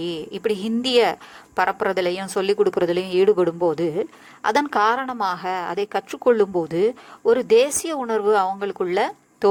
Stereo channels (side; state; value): both; identical; correlation 1.00